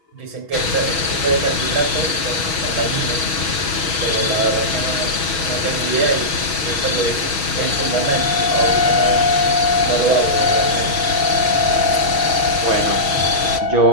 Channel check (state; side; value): late; left; 6.2 ms